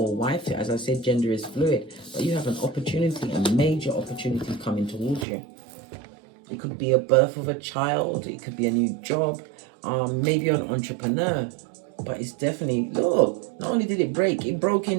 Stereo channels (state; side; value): drops out; left; at 5.2 s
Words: wife. As I said, gender is fluid. But you have an opportunity, a major opportunity coming towards you. It could be a birth of a child. It could be a new job. Maybe you're an entrepreneur. But it's definitely, look, not only did it break, it broke